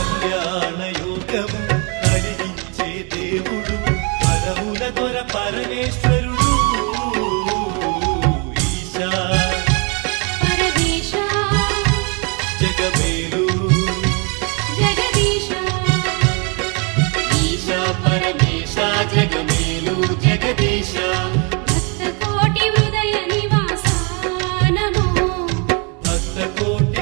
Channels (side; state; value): left; quieter; 33.5 dB